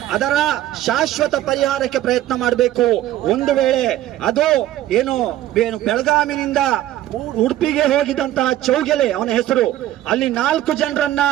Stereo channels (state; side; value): quieter; left; 13.6 dB